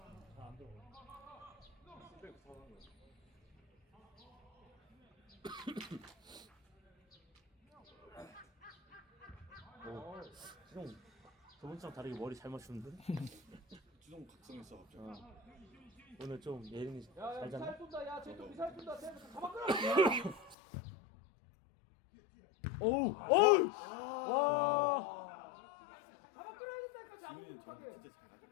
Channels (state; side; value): drops out; right; at 20.6 s